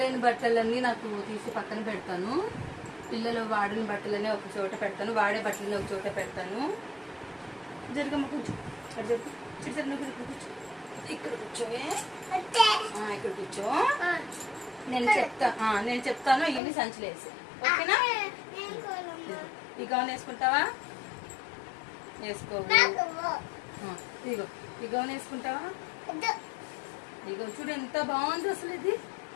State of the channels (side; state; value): right; drops out; at 16.6 s